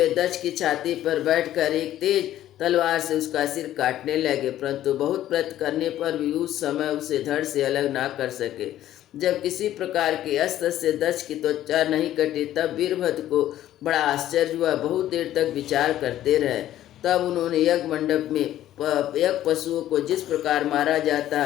दक्ष की छाती पर बैठकर एक तेज तलवार से उसका सिर काटने लगे, परंतु बहुत प्रयत्न करने पर भी उस समय उसे धड़ से अलग ना कर सके। जब किसी प्रकार के अस्त्र से दक्ष की त्वचा नहीं कटी, तब वीरभद्र को बड़ा आश्चर्य हुआ। बहुत देर तक विचार करते रहे। तब उन्होंने यज्ञ मंडप में यज्ञ पशुओं को जिस प्रकार मारा जाता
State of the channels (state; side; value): quieter; right; 12.9 dB